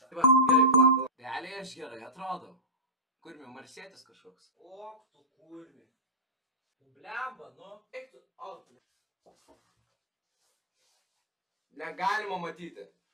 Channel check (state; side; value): normal; both; correlation -0.14